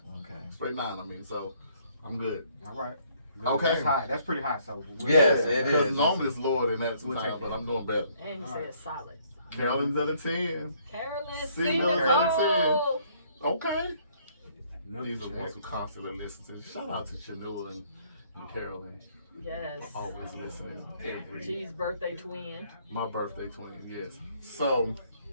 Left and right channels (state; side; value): inverted; both; correlation -0.64